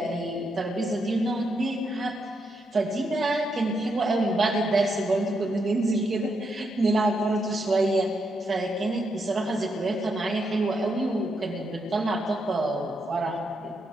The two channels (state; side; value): normal; both; correlation 0.80